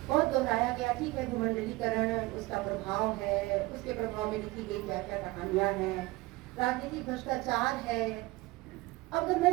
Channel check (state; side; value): quieter; left; 20.9 dB